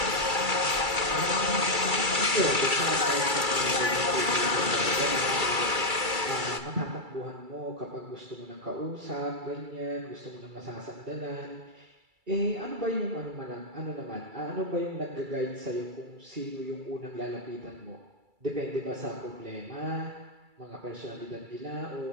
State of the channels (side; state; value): left; late; 2.3 ms